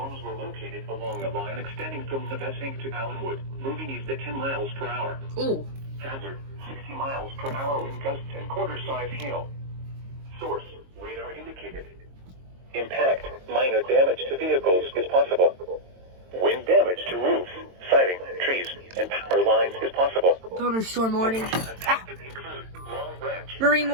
were located along a line extending from Navesink to Allenwood, moving east at 10 miles per hour. Ooh. Hazard, 60 miles per hour with gusts and quarter-size hail. Source, radar indicated. Impact, minor damage to vehicles is possible. Wind damage to roofs, siding, trees, and power lines is possible. Thunderstorm warning. Impacted include Long Branch, Marine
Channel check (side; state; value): left; late; 22 ms